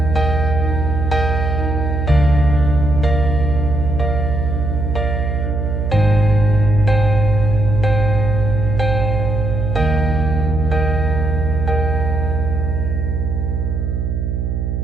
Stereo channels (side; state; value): right; noise; hum, 2 dB below the sound